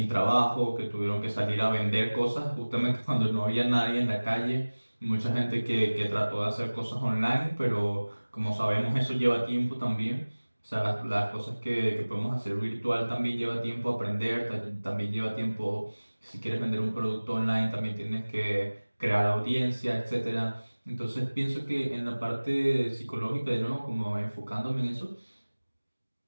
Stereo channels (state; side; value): inverted; both; correlation -1.00